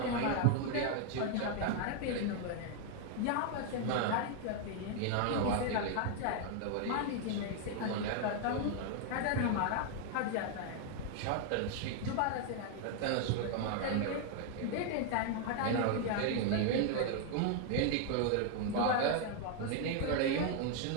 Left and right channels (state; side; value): different; both; correlation 0.00